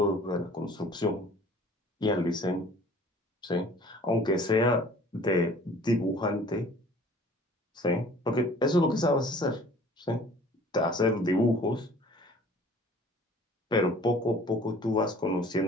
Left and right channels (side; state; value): both; normal; correlation 0.50